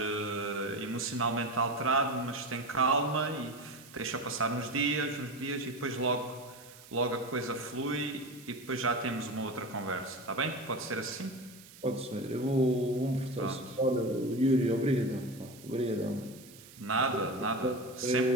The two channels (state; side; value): noise; right; hiss, 20 dB below the sound